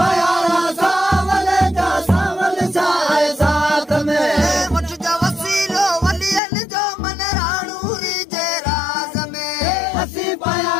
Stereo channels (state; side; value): drops out; right; at 6.4 s